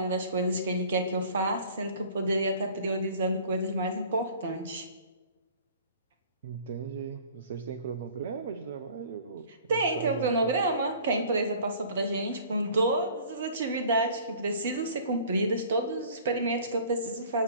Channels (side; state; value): both; inverted; correlation -0.49